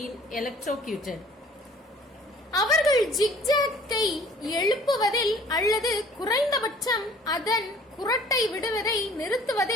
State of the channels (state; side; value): normal; both; correlation 0.52